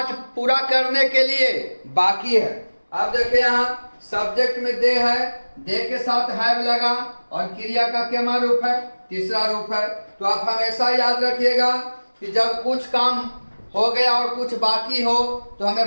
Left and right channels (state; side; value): inverted; both; correlation -1.00